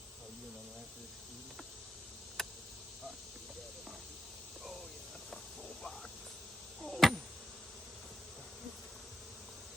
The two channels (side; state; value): both; normal; correlation 0.84